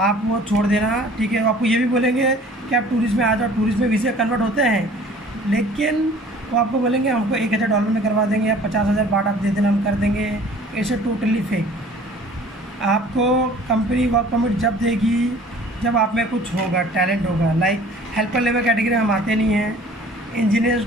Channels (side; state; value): both; normal; correlation 0.49